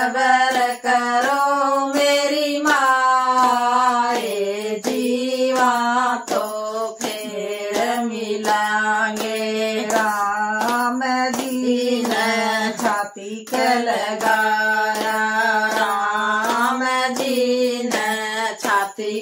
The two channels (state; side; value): identical; both; correlation 1.00